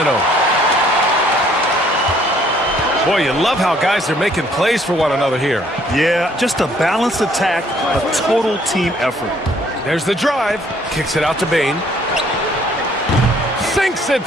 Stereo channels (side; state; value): both; normal; correlation 0.62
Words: Boy, you love how guys are making plays for one another here. Yeah, just a balanced attack, a total team effort. There's the drive. Kicks it out to Payne. Sinks it